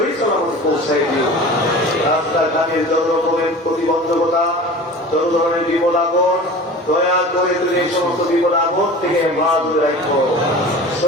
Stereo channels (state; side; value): normal; both; correlation 0.38